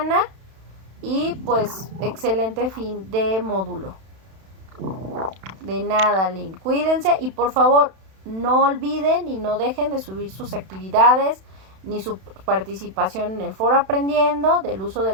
y pues excelente fin de módulo. De nada, Lynn. Cuídense y por favor no olviden y no dejen de subir sus actividades ni su participación en el foro aprendiendo, del uso de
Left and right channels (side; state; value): left; late; 31 ms